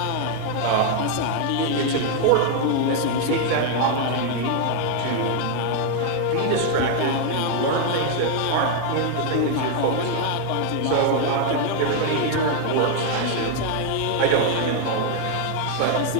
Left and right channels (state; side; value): different; both; correlation 0.00